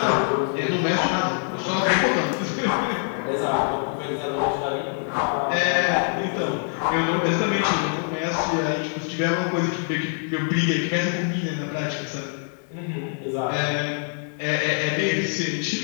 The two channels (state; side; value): silent; right; 57 dB below the other